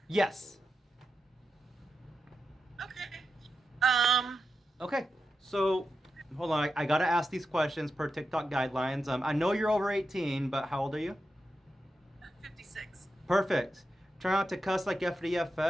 Yes. Okay. Okay. So, hold on. I gotta ask these questions per TikTok guidelines. I know you're over 18, but how old are you? 56. Perfect. Try not to cuss like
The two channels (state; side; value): normal; both; correlation 0.89